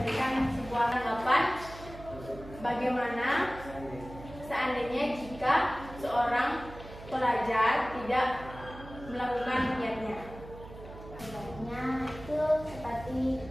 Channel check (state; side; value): noise; right; hum, 15 dB below the sound